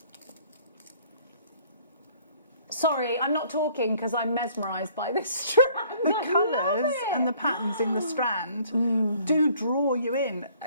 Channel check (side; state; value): both; inverted; correlation -0.58